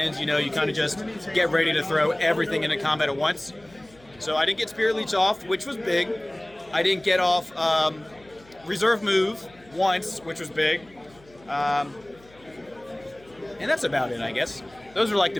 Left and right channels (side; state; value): left; noise; hum, 27 dB below the sound